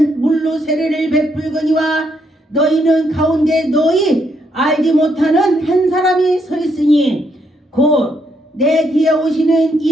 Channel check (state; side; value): normal; both; correlation 0.75